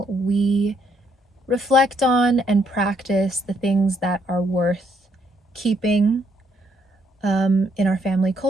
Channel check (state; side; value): normal; both; correlation 0.72